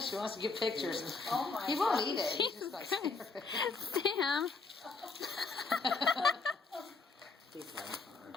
wants to give pictures. Oh my He won't eat it. He's just like, Sam.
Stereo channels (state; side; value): quieter; right; 4.1 dB